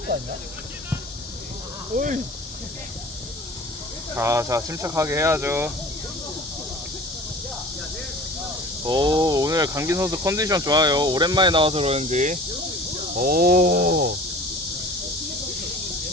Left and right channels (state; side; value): normal; both; correlation 0.42